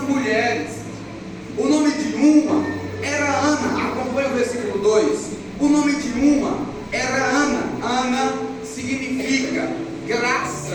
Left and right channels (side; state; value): both; identical; correlation 1.00